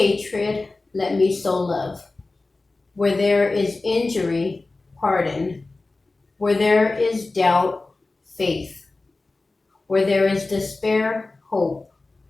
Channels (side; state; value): right; quieter; 3.3 dB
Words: let me sow love. Where there is injury, pardon. Where there is doubt, faith. Where there is despair, hope.